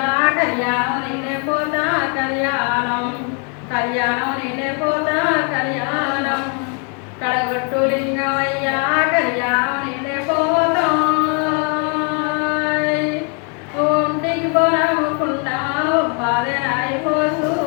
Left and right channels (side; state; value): right; quieter; 38.2 dB